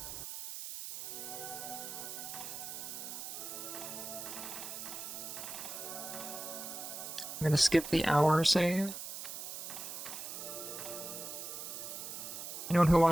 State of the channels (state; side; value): noise; right; hiss, 7 dB below the sound